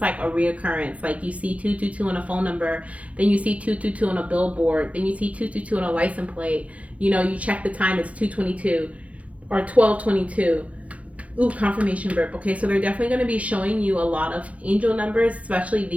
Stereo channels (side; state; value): left; late; 0.066 ms